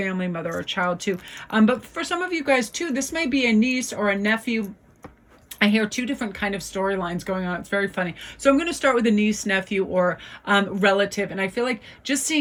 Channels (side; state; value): both; identical; correlation 1.00